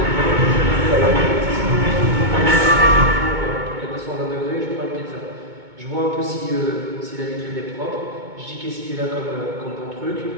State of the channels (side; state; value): left; late; 2.2 ms